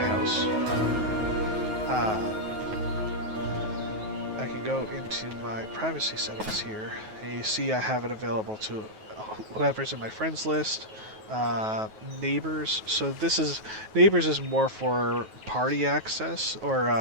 I can go into my privacy settings here, and you see I have it available to whoever's in my friends list, neighbors. So neighbors is more for party access,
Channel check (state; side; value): late; left; 9.3 ms